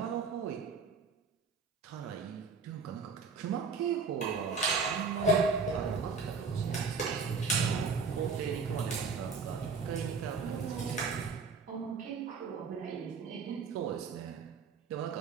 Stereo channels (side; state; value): left; quieter; 4.9 dB